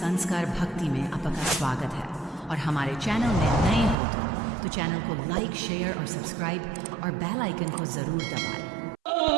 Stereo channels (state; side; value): drops out; left; at 4.0 s